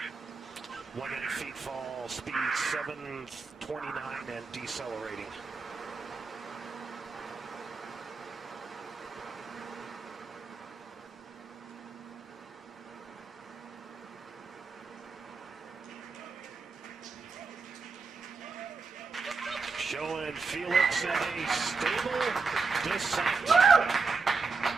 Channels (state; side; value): quieter; left; 4.5 dB